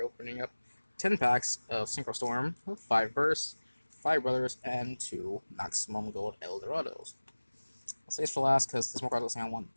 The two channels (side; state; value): both; inverted; correlation -1.00